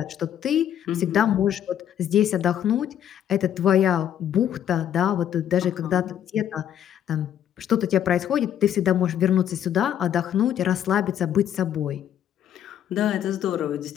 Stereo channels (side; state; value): right; quieter; 10.1 dB